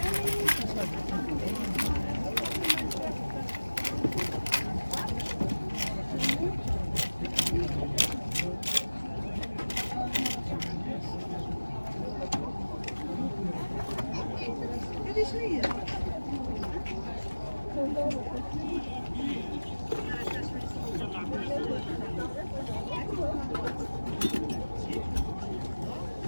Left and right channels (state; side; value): inverted; both; correlation -1.00